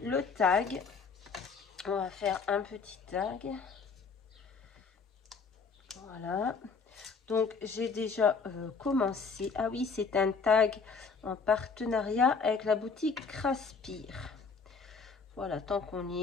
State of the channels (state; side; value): quieter; right; 5.0 dB